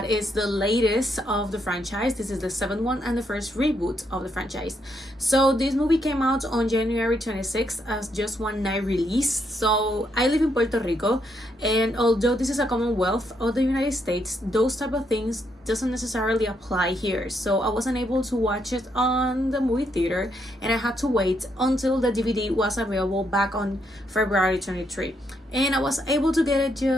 is the latest of the franchise. This is the 7th one and the first reboot of the franchise. So this movie came out on January 26th as just one night release. So I live in Puerto Rico, and although this is a Commonwealth of the United States, those type of things doesn't necessarily apply here. So I wasn't able to watch it on the movie theater, and I had to wait until the DVD was available back on February 23, and I was able to get it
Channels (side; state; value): both; normal; correlation 0.77